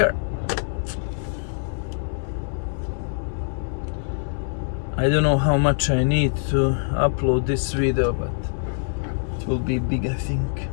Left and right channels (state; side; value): silent; right; digital silence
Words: I don't know how much I need to upload this video, but it will be big, I think,